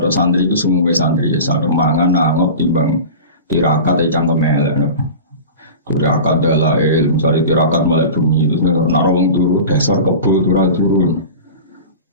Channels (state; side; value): inverted; both; correlation -0.34